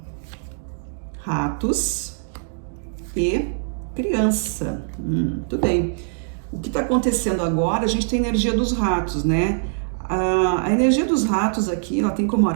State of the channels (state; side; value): silent; left; digital silence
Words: ratos e criança. Tudo bem. O que está acontecendo agora, a gente tem a energia dos ratos, né? A energia dos ratos aqui, ela tem como